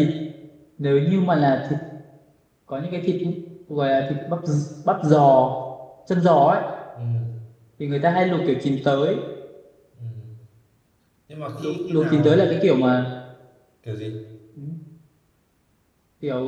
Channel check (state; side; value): identical; both; correlation 1.00